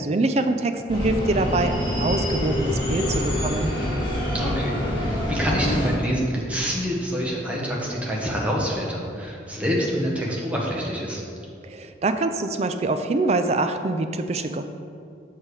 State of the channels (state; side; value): normal; both; correlation 0.56